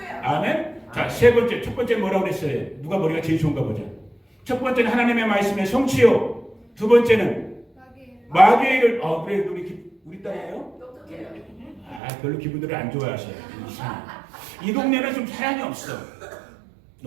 아멘. 자, 첫 번째 뭐라고 그랬어요? 누가 머리가 제일 좋은가 보자. 첫 번째는 하나님의 말씀의 성취요. 두 번째는 마귀의 일을. 그래 우리 딸이에요? 별로 기분들을 안 좋아하셔요. 이 동네는 좀 사랑이 없어.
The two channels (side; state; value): left; drops out; at 12.0 s